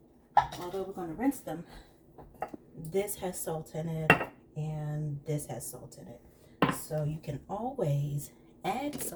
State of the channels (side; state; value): both; identical; correlation 1.00